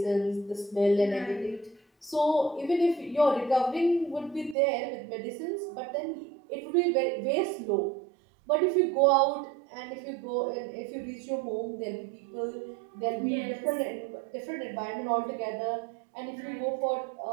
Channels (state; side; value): drops out; left; at 4.5 s